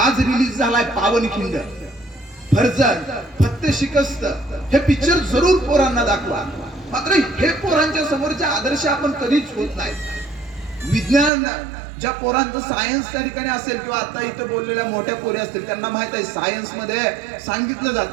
रिलीज झालाय पावनखिंड. फर्जन, फत्ते शिकस्त हे पिक्चर जरूर पोरांना दाखवा. मात्र हे पोरांच्या समोरचे आदर्श आपण कधीच होत नाही. विज्ञान ज्या पोरांचं सायन्स त्या ठिकाणी असेल किंवा आता इथं बोललेल्या मोठ्या पोरी असतील त्यांना माहित आहे सायन्स मध्ये सांगितलं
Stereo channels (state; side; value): drops out; left; at 11.3 s